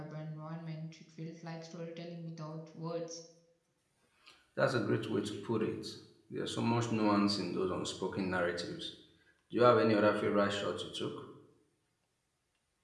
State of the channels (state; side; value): identical; both; correlation 1.00